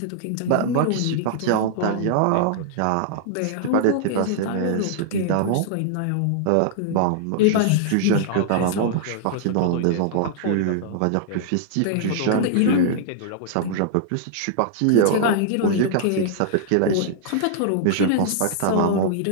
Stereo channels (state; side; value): different; both; correlation -0.01